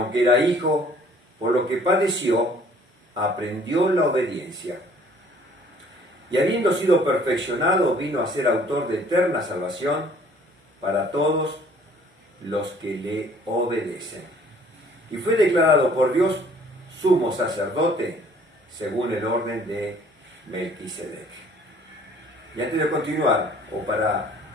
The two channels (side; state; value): both; normal; correlation 0.56